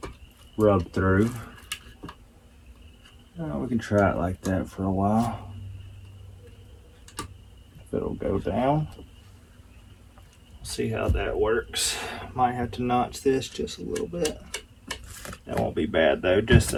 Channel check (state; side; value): identical; both; correlation 1.00